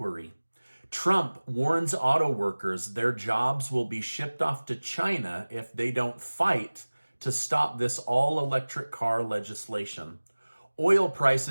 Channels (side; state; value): both; inverted; correlation -1.00